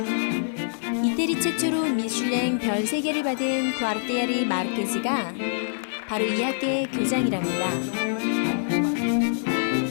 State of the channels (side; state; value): right; silent; 56 dB below the other